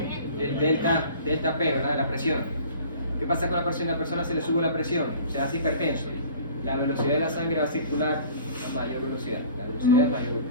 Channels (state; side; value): inverted; both; correlation -0.46